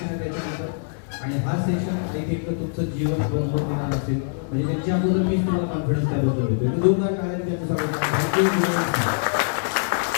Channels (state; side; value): silent; right; digital silence